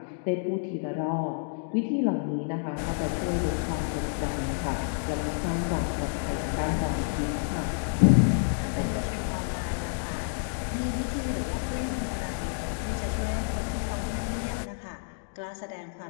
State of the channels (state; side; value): silent; right; digital silence